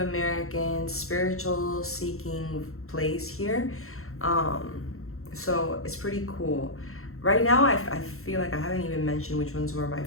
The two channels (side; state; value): right; late; 0.63 ms